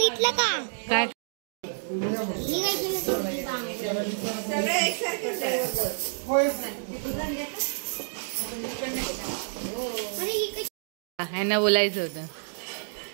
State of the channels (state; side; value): silent; left; digital silence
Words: का काय? ह्यांना बोलायचं होतं